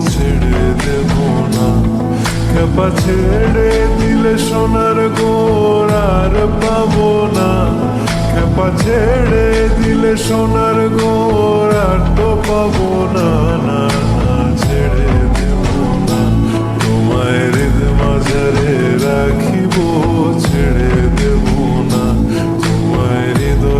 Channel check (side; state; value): both; identical; correlation 1.00